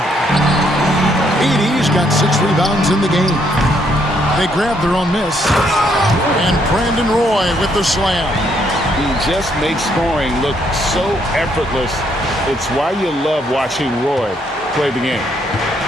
Edey's got 6 rebounds in the game. They grab their own miss. And Brandon Roy with the slam. He just makes scoring look so effortless. It's why you love watching Roy play the game.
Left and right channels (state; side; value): normal; both; correlation 0.71